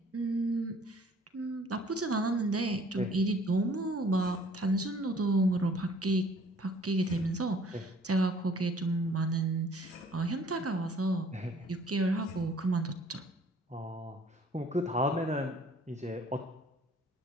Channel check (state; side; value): normal; both; correlation 0.56